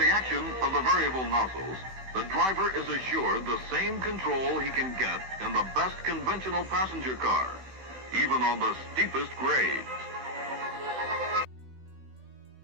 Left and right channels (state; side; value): late; left; 16 ms